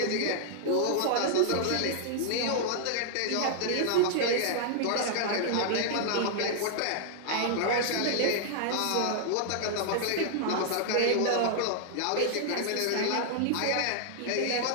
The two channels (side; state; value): both; different; correlation -0.01